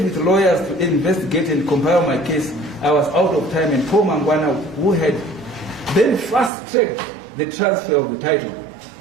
with lawyers to investigate and compile my case, I was out of time, and Paul Mangwana, who had then fast-tracked the transfer of the title,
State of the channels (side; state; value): left; drops out; at 6.5 s